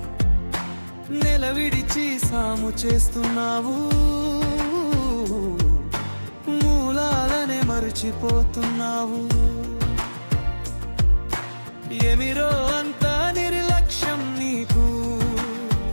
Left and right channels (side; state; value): both; inverted; correlation -1.00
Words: నెల విడిచి సాము చేస్తున్నావు, మూలాలనే మరచిపోతున్నావు. ఏమిరో అంత నిర్లక్ష్యం నీకు,